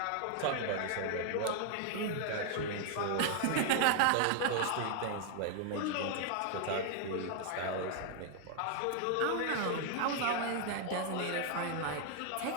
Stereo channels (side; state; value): both; different; correlation 0.00